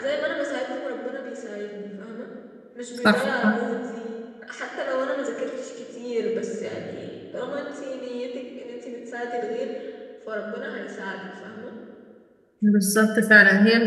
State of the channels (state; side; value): identical; both; correlation 1.00